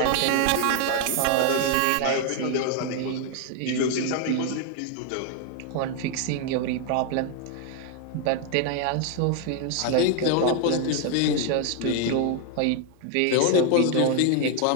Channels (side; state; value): both; different; correlation 0.00